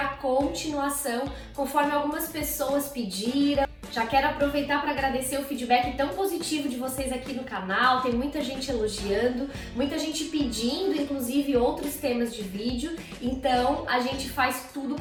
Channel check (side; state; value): both; identical; correlation 1.00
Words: continuação, conforme algumas pessoas pediram. Já quero aproveitar para agradecer o feedback tão positivo de vocês aqui no canal. Tem muita gente elogiando, muita gente pedindo, inclusive, outros temas de vídeo. Então, a gente faz tudo